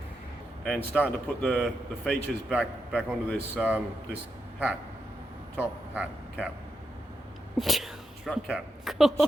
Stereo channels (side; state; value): both; normal; correlation 0.84